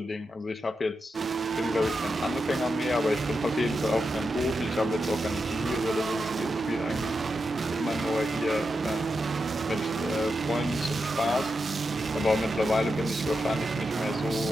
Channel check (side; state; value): both; normal; correlation 0.87